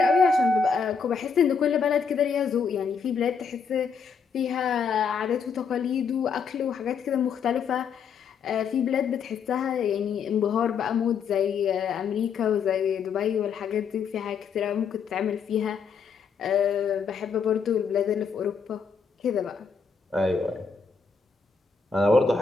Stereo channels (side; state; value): right; quieter; 5.9 dB